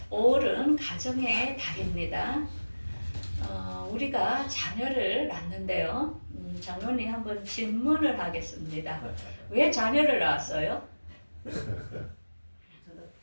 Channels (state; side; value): inverted; both; correlation -1.00